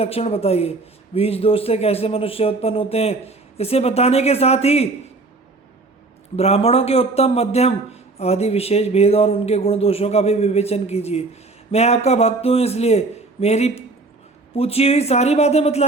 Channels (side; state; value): left; quieter; 3.4 dB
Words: बताइए। बीज दोष से कैसे मनुष्य उत्पन्न होते हैं, इसे बताने के साथ ही ब्राह्मणों के उत्तम, मध्यम आदि विशेष भेद और उनके गुण दोषों का भी विवेचन कीजिए। मैं आपका भक्त हूँ, इसलिए मेरी पूछी हुई सारी बातें